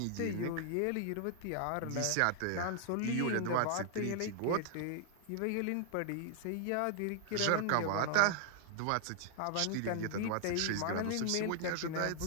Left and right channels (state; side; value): different; both; correlation 0.00